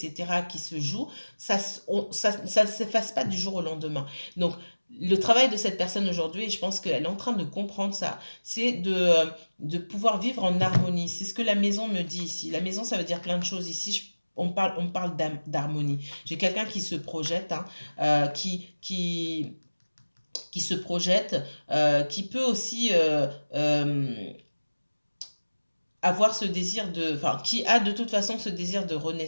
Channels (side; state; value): both; inverted; correlation -1.00